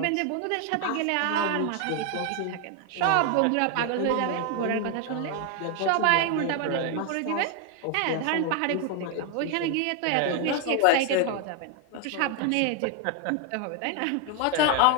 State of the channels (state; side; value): different; both; correlation 0.01